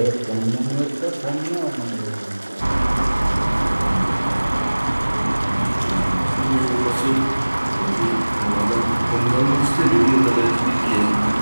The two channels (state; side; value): inverted; both; correlation -1.00